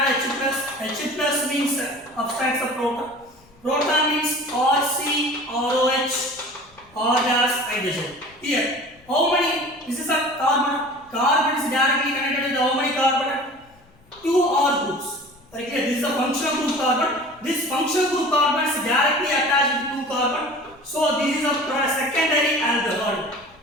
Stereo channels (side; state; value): left; noise; rumble, 29 dB below the sound